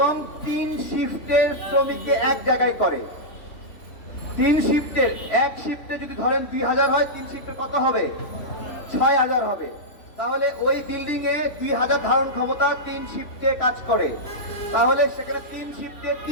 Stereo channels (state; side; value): late; right; 3.1 ms